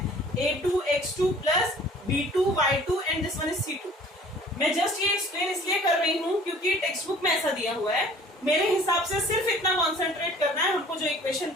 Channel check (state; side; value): normal; both; correlation 0.50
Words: a2 x2 plus b2 y2 and this one is c2. मैं जस्ट ये एक्सप्लेन इसलिए कर रही हूँ क्योंकि टेक्स्ट बुक में ऐसा दिया हुआ है. मेरे हिसाब से सिर्फ इतना कॉन्सेंट्रेट करना है. हमको जो इक्वेशन